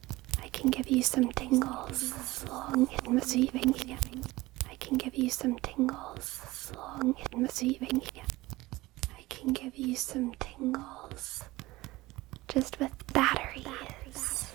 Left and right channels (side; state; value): left; quieter; 19.5 dB